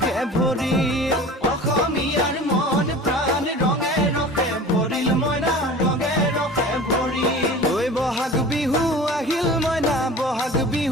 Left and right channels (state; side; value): normal; both; correlation 0.39